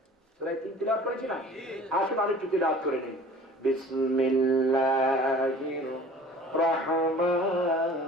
সূরা 3 তিলাওয়াত করেছি না? আসুন আরেকটু তিলাওয়াত করে নেই। বিসমিল্লাহির রহমানির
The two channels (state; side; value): normal; both; correlation 0.46